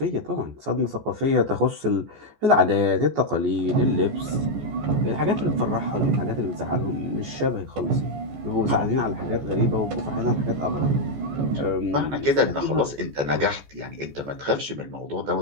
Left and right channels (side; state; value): left; late; 14 ms